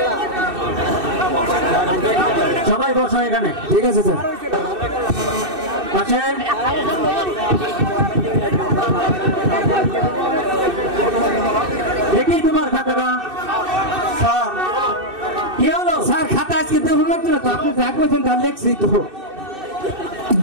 সবাই বসো এখানে ঠিক আছে স্যার আসেন দেখি তোমার খাতাটা স্যার কি হলো স্যার খাতা আজকে দেবো না তো আপনি যা করছেন তা লেখছি তো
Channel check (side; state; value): left; late; 2.6 ms